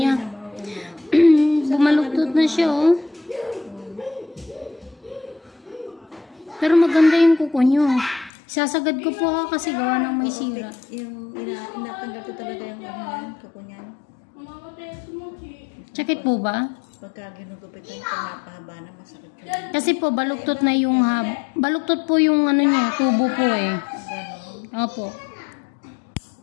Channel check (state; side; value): drops out; right; at 8.3 s